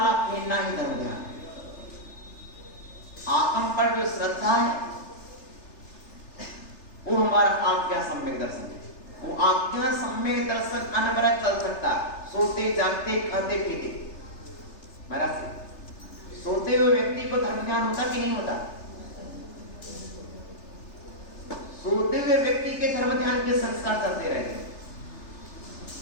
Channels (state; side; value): late; right; 3.3 ms